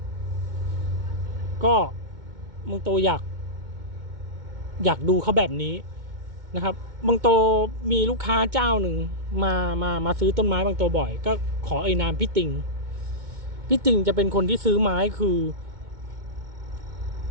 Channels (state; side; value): late; left; 2.2 ms